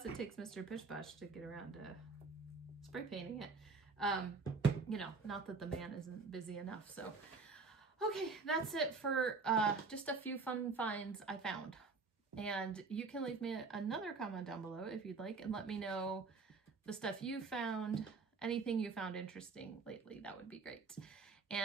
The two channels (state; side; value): quieter; left; 4.4 dB